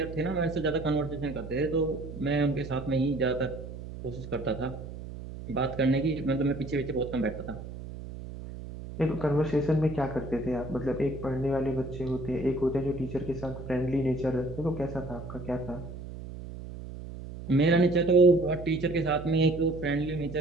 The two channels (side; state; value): right; noise; hum, 11 dB below the sound